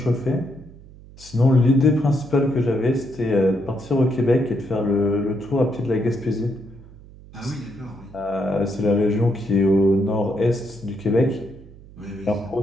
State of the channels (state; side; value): noise; right; hum, 20 dB below the sound